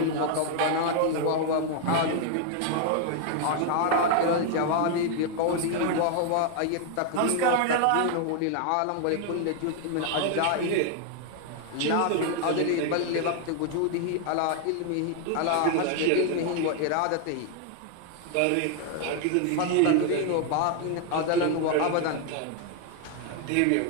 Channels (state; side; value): different; both; correlation 0.00